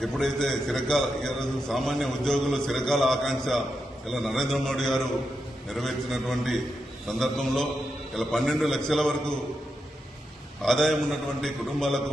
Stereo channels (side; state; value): both; normal; correlation 0.86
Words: ఎప్పుడైతే ఈరోజు సామాన్య ఉద్యోగులు చిరకాల ఆకాంక్ష ఇలా నరేంద్ర మోడీ గారు నెరవేర్చినటువంటి సందర్భంలో ఇలా 12 లక్షల వరకు ఆదాయం ఉన్నటువంటి